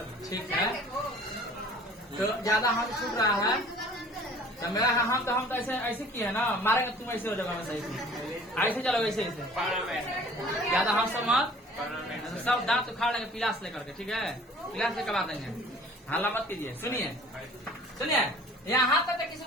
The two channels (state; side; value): normal; both; correlation 0.49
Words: ठीक है, तो ज्यादा हम छूट रहा है तो मेरा हम तो ऐसे किए है ना, मारेंगे तुम ऐसे हो जाओगे, सही ऐसे चलो, ऐसे ज्यादा हम सब मत, सब दांत उखाड़ लेंगे पिलास लेकर के, ठीक है? पिलास लेकर आ देंगे, हल्ला मत कीजिए। सुनिए यहाँ तक किसी